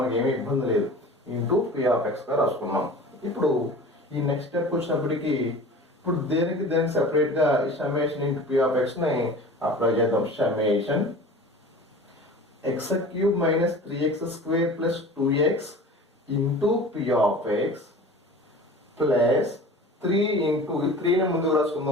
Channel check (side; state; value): both; normal; correlation 0.39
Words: ఏమీ ఇబ్బంది లేదు. ఇంటూ పి ఆఫ్ ఎక్స్గా రాసుకున్నాం. ఇప్పుడు ఈ నెక్స్ట్ స్టెప్ వచ్చినప్పటికీ ఇప్పుడు దేనికి సెపరేట్గా ఈ సమ్మేషన్ ఇంటూ పి ఆఫ్ ఎక్స్ని అప్లై చేద్దాం. Summation x cube minus 3x² plus 2x into p of x plus 3 into 3ని ముందుకు